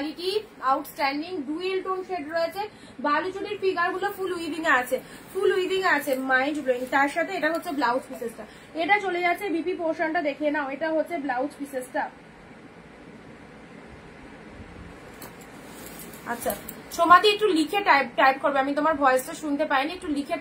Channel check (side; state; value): both; identical; correlation 1.00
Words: outstanding, dual tone shade রয়েছে। বালুচুরির ফিগার গুলো ফুল উইভিং এ আছে, ফুল উইভিং এ আছে, মাইন্ড ব্লোয়িং। তার সাথে এটা হচ্ছে ব্লাউজ পিসেসটা, এটা চলে যাচ্ছে বিপি পোর্শনটা দেখে নাও, এটা হচ্ছে ব্লাউজ পিসেসটা। আচ্ছা সোমাদি একটু লিখে টাইপ করবে, আমি তোমার ভয়েসটা শুনতে পাইনি, একটু লিখে